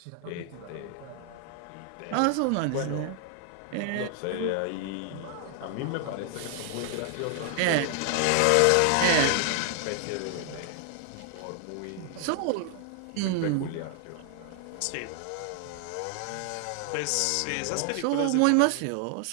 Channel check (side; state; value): both; different; correlation 0.00